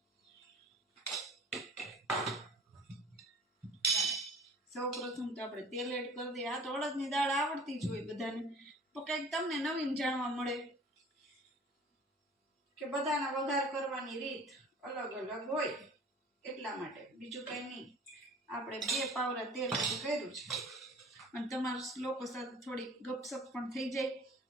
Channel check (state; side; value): normal; both; correlation 0.47